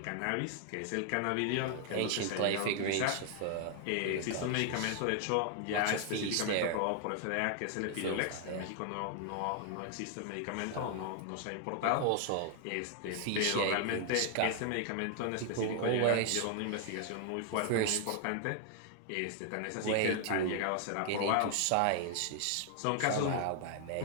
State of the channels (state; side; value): different; both; correlation 0.00